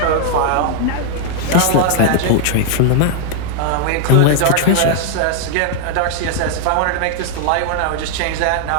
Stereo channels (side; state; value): both; different; correlation 0.00